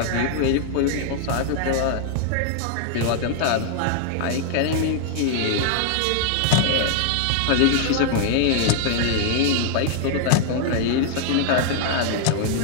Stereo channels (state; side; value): different; both; correlation 0.00